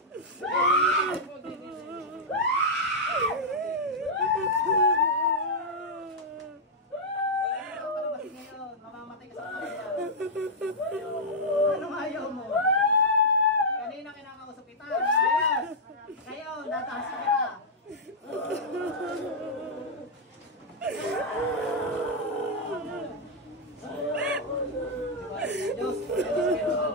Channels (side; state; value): both; normal; correlation -0.05